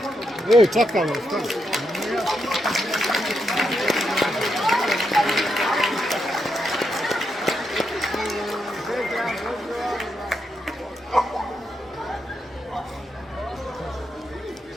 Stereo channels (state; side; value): normal; both; correlation 0.82